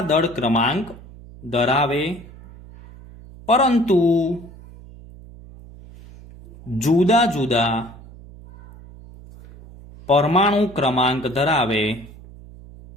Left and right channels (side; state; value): right; noise; hum, 19 dB below the sound